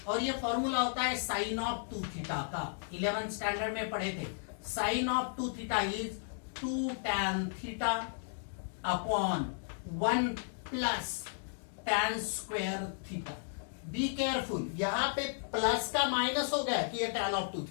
और ये फॉर्मूला होता है साइन ऑफ 2 थीटा का। 11th स्टैंडर्ड में पढ़े थे। Sine of 2 theta is 2 tan theta upon 1 plus tan square theta. Be careful, यहाँ पे प्लस का माइनस हो गया कि ये tan ऑफ 2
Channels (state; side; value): silent; right; digital silence